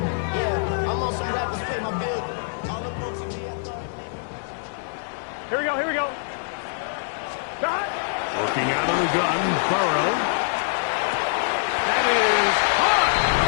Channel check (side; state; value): right; silent; digital silence